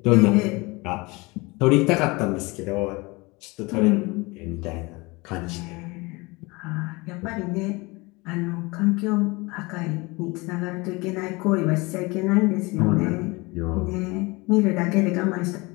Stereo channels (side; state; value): right; quieter; 24.8 dB